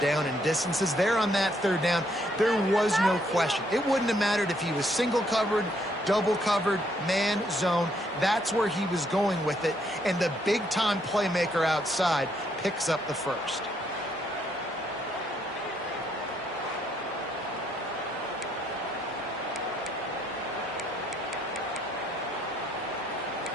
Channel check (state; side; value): normal; both; correlation 0.71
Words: and distances. There on that third down, there was no question. It wouldn't have mattered if he was single covered, double covered, man, zone. That's where he was going with it, and the big-time playmaker outside picks up the first.